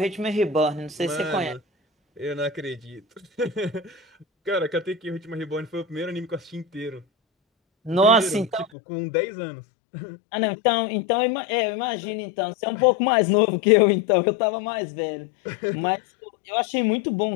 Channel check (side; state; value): right; drops out; at 8.7 s